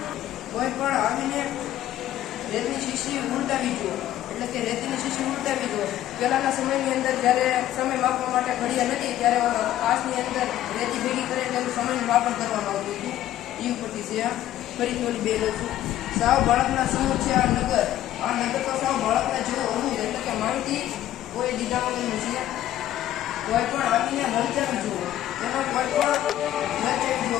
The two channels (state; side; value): quieter; right; 12.9 dB